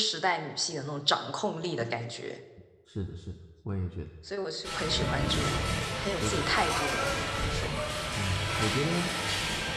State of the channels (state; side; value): identical; both; correlation 1.00